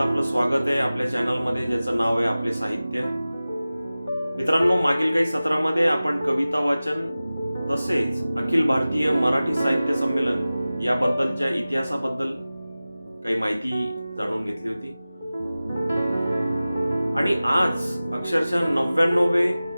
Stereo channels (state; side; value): inverted; both; correlation -0.97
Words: आपलं स्वागत आहे आपल्या चॅनलमध्ये ज्याचं नाव आहे आपले साहित्य. मित्रांनो, मागील काही सत्रामध्ये आपण कविता वाचन तसेच अखिल भारतीय मराठी साहित्य संमेलन याबद्दलच्या इतिहासाबद्दल काही माहिती जाणून घेतली होती. आणि आज अक्षरशः 99वे